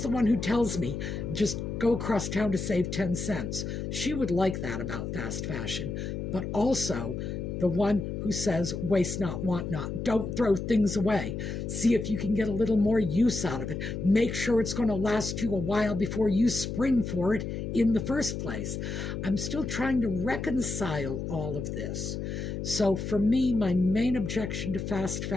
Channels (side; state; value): left; noise; hum, 4 dB below the sound